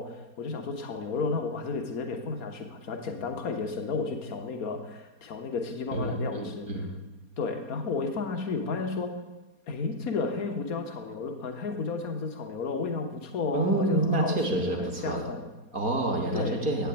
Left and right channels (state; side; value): late; right; 4.3 ms